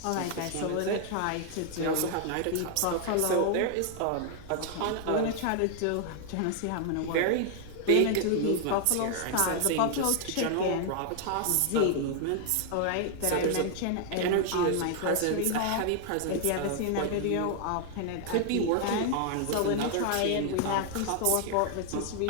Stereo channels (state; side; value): different; both; correlation 0.00